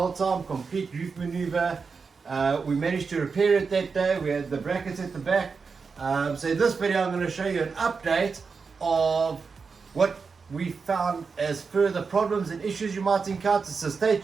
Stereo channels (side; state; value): left; quieter; 5.1 dB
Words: time, complete roof maneuver. We managed to repair it that day. We had the brackets at the back. So in this video I'm going to show you an update of what we found as further problems and issues you might encounter. So stay